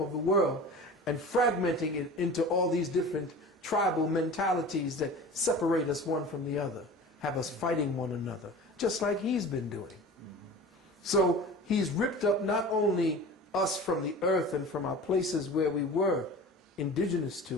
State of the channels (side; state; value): both; normal; correlation 0.37